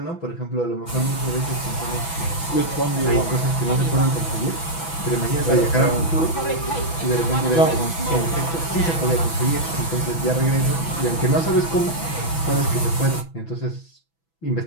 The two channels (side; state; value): right; late; 6.0 ms